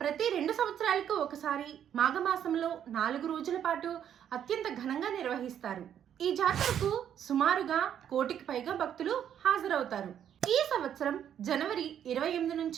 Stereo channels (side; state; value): left; quieter; 9.5 dB